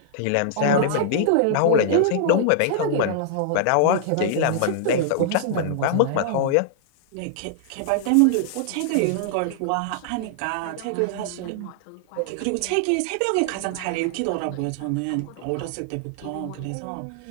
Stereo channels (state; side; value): different; both; correlation -0.01